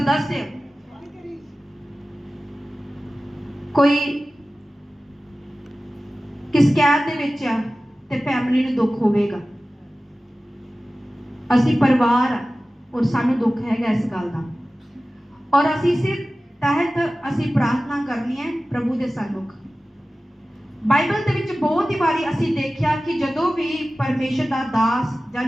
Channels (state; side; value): normal; both; correlation 0.96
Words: कोई किस कैद दे विच है ते फैमिली नूं दुख होवेगा। असीं परिवार और सानूं दुख हैगा इस गल दा, और असीं इस तहत असीं प्रार्थना करनी है प्रभु दे सन्मुख। बाइबल दे विच बहुत ही बारी असीं देखिया कि जदों भी परमेश्वर दा दास जां